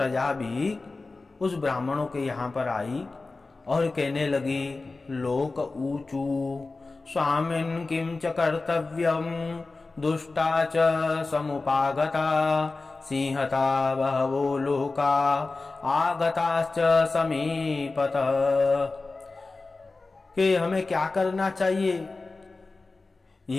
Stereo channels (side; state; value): right; quieter; 3.6 dB